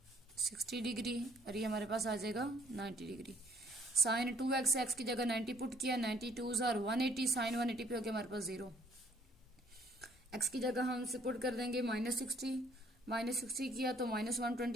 60 degree और ये हमारे पास आ जाएगा 90 डिग्री। साइन 2x, एक्स की जगह 90 पुट किया, 90 2s और 180, साइन 180 पे हो गया हमारे पास 0। एक्स की जगह हम इसे पुट कर देंगे -60 किया तो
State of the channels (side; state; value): both; normal; correlation 0.61